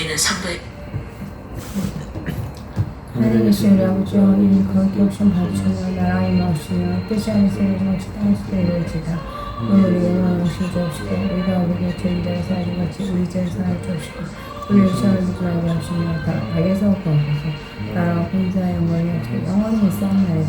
상도의 하나님 계신 우리 아버지여, 이름 거룩히 오신 받으시며 나라가 임하옵시며 뜻이 하늘에서 이루어지듯이 땅에서도 이루어지이다. 오늘 우리에게 일용할 것을 주옵시고 우리가 우리에게 죄를 지어 사하지 같이 우리 죄를 사하여 주옵시고 우리를 시험에 들지 말게 하시며 악에서 구하소서. 나라와 권세와 영광이 영원히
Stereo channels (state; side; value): identical; both; correlation 1.00